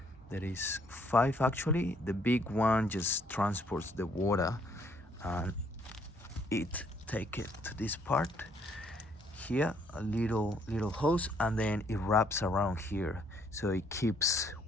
There is 5 actually. The big one just transports the water, and it take it to this part here, a little hose, and then it wraps around here, so it keeps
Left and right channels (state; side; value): normal; both; correlation 0.66